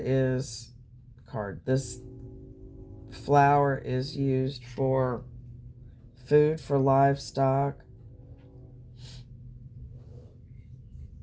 this flower is used for food for livestock.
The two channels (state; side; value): identical; both; correlation 1.00